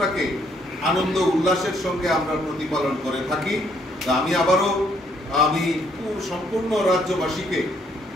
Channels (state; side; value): normal; both; correlation 0.69